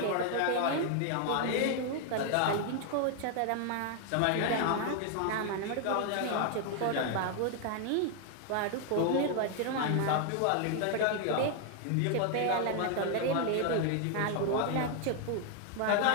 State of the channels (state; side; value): different; both; correlation 0.00